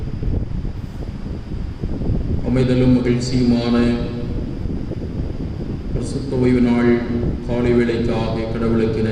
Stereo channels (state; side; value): identical; both; correlation 1.00